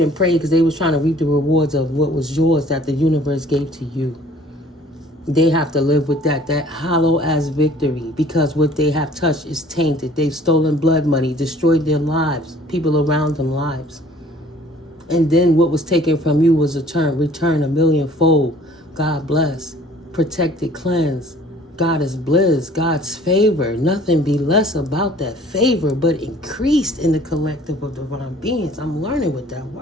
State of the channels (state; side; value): normal; both; correlation 0.53